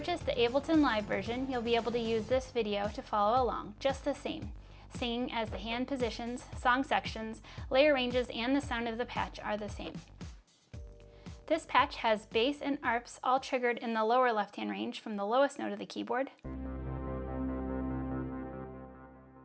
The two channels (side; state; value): both; identical; correlation 1.00